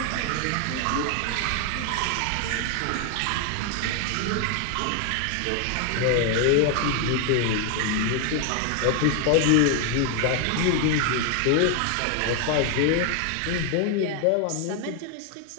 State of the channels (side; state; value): both; different; correlation 0.00